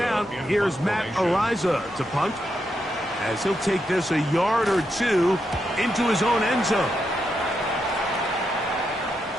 here's Matt Araiza to punt, as he'll take this a yard or two into his own end zone.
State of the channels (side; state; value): both; normal; correlation 0.83